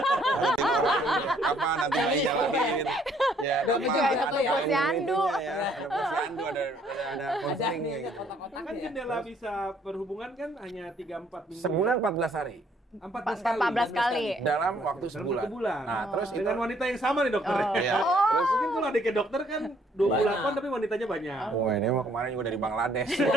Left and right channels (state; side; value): normal; both; correlation 0.65